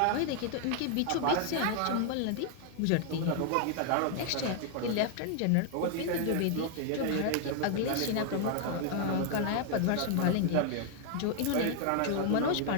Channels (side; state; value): both; different; correlation 0.00